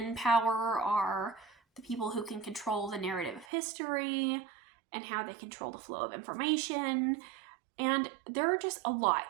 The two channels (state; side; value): drops out; left; at 3.5 s